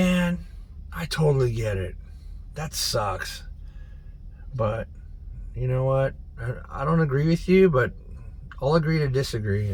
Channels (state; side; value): identical; both; correlation 1.00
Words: I totally get it. That sucks. But you know what? I don't agree with you, but I'll agree to